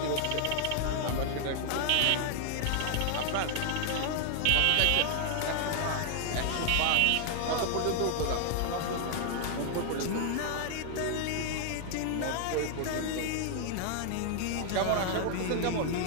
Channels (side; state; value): both; different; correlation 0.00